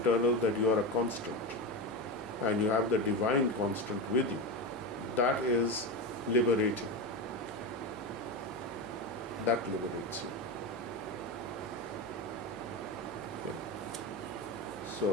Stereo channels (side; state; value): left; noise; hum, 25 dB below the sound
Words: That you are a constant. And you have the divine constant with you. That is liberating. That liberates you. Okay.